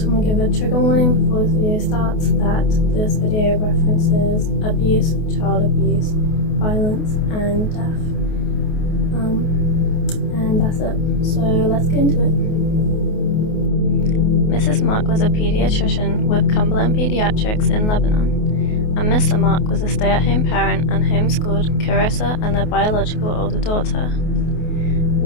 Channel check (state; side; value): late; right; 28 ms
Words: want to give a trigger warning before this video starts that this video references abuse, child abuse, violence and death. And that's it. So let's get into it. Mrs. Mark was a pediatrician with Cumberland Pediatrics in Lebanon, and Mr. Mark was a stay-at-home parent and homeschooled Kairissa and their biological older daughter.